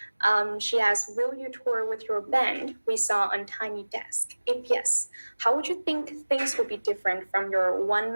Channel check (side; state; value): both; inverted; correlation -1.00